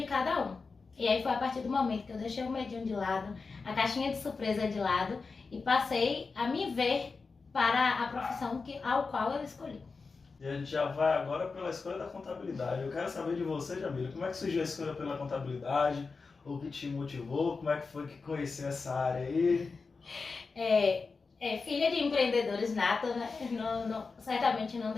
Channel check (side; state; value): right; quieter; 4.5 dB